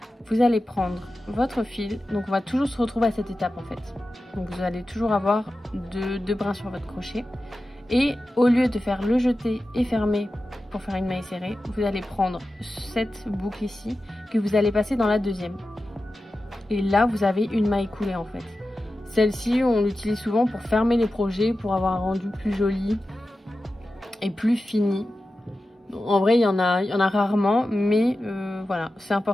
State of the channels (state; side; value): normal; both; correlation 0.93